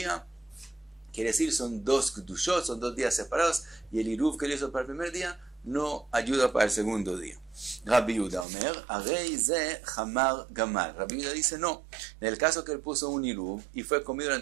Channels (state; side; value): drops out; left; at 8.5 s